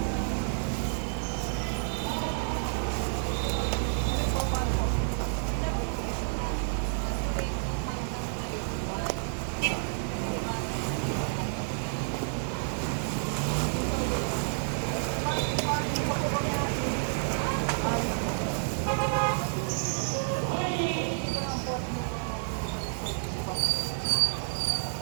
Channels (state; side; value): silent; left; digital silence